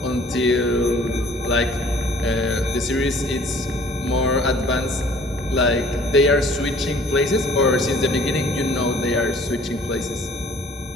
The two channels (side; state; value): both; normal; correlation 0.54